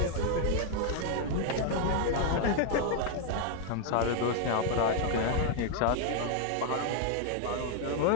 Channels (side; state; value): both; different; correlation 0.00